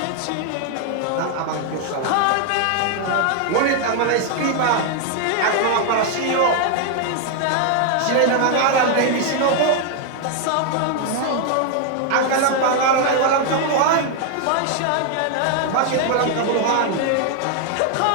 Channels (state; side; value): different; both; correlation 0.00